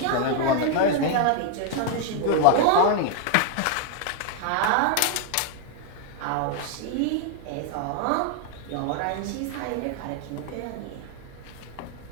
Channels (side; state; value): both; different; correlation 0.00